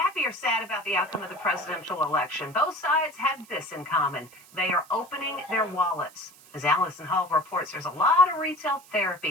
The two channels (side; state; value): right; noise; hiss, 24 dB below the sound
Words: or sad about the outcome of the presidential election, both sides have this in common. They are opening their wallets. As Allison Hall reports, there's a lot of retail